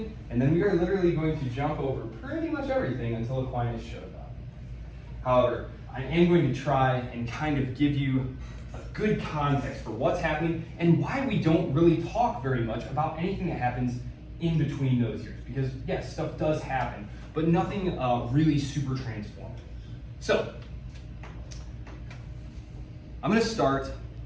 and then we are literally going to jump over pretty much everything until Aquinas showed up. However, I am going to try and kind of give you a good context for what's happening and why we don't really talk very much about anything that happens in between those years. Because yes, stuff does happen, but nothing really super transformative. So, I'm going to start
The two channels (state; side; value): identical; both; correlation 1.00